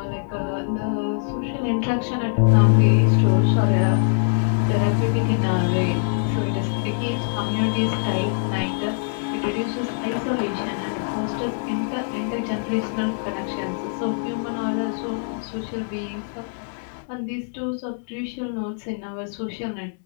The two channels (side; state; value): right; silent; 63 dB below the other